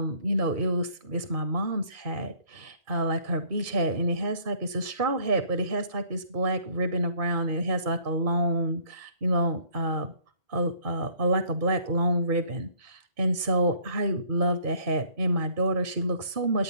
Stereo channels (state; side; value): late; left; 2.2 ms